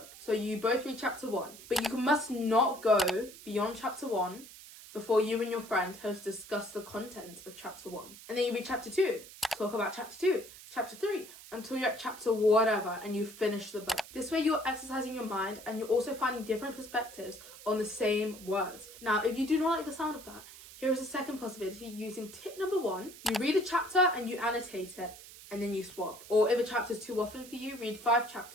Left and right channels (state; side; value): noise; right; hiss, 17 dB below the sound